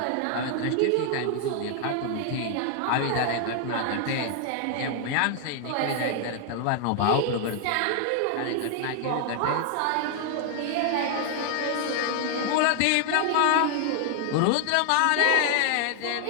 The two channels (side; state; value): both; different; correlation 0.00